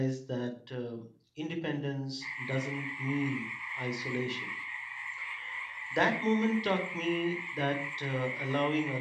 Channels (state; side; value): identical; both; correlation 1.00